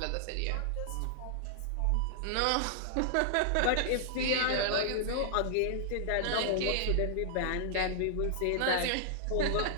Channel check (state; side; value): different; both; correlation -0.01